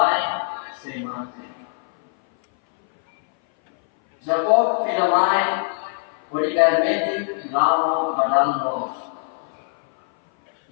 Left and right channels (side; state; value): right; silent; 59 dB below the other